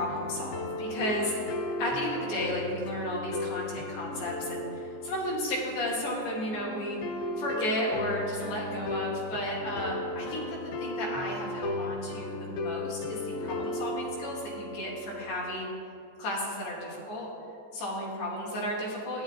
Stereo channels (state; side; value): late; right; 14 ms